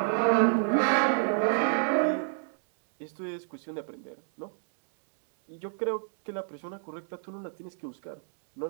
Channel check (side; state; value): left; silent; digital silence